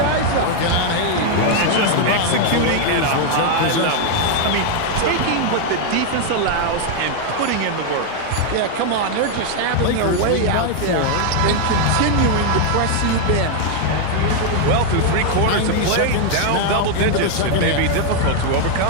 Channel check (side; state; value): both; different; correlation 0.00